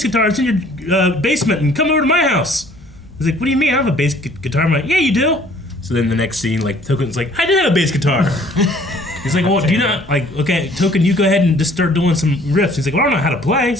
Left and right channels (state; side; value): normal; both; correlation 0.57